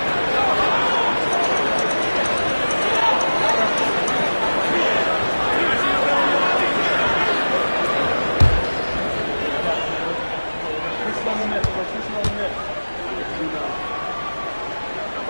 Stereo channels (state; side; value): inverted; both; correlation -1.00